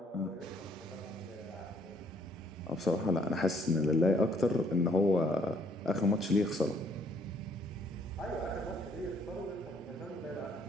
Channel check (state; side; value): normal; both; correlation 0.65